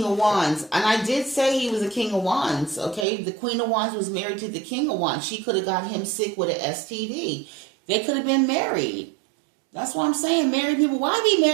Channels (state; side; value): drops out; left; at 3.1 s